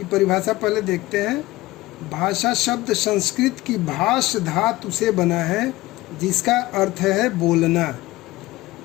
परिभाषा पहले देखते हैं। भाषा शब्द संस्कृत की भाष धातु से बना है, जिसका अर्थ है बोलना।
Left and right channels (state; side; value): quieter; right; 18.6 dB